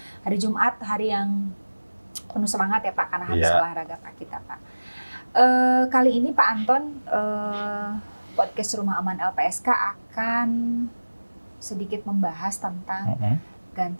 Hari Jumat, hari yang penuh semangat ya Pak, karena habis olahraga Pak kita Pak. Kali ini Pak Anton, podcast Rumah Aman LPSK akan sedikit membahas tentang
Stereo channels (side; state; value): both; inverted; correlation -1.00